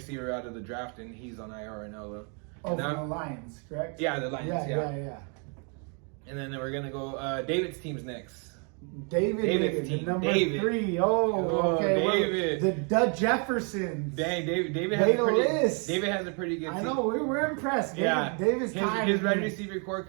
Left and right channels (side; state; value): left; quieter; 37.9 dB